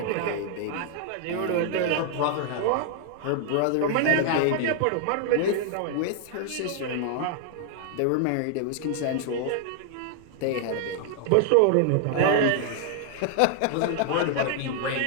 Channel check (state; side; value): different; both; correlation 0.00